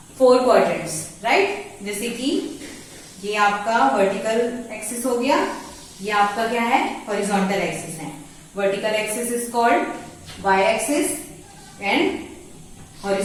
4 quadrants, right. जैसे कि ये आपका वर्टिकल एक्सिस हो गया, ये आपका क्या है, हॉरिजॉन्टल एक्सिस है. Vertical axis is called y axis and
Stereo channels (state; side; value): identical; both; correlation 1.00